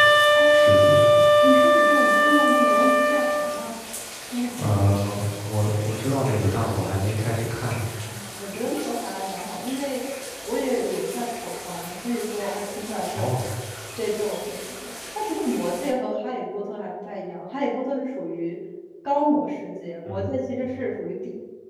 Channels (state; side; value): identical; both; correlation 1.00